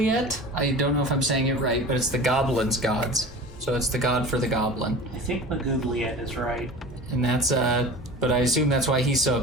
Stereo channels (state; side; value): normal; both; correlation 0.37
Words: I don't know if I'm saying it right, but it's the goblin's gods. So it's the god for the goblin. I think Magoobliet is right. And that's, but I assume that's why he's so